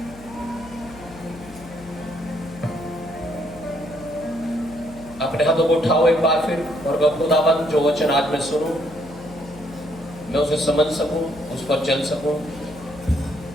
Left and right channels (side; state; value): left; noise; hum, 18 dB below the sound